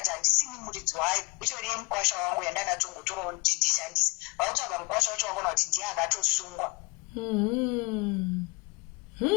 handisini muridzi wayo itoriye mukwasha wangu yandanatongotorawo kuti ndishandise vakutsvaga mukwasha wacho wakona kuti ndiye akatosungwa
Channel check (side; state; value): right; quieter; 27.1 dB